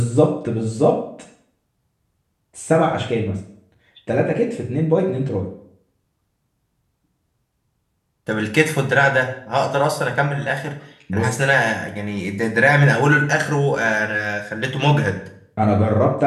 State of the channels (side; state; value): both; identical; correlation 1.00